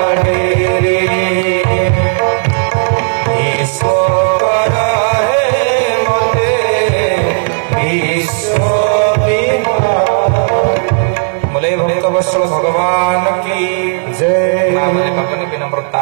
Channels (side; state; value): left; silent; digital silence